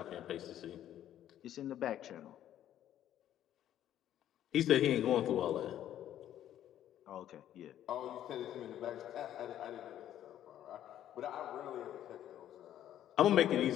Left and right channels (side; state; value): right; quieter; 11.5 dB